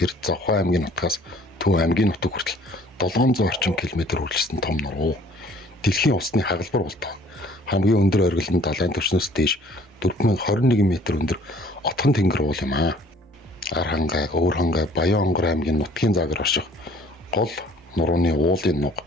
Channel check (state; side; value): normal; both; correlation 0.55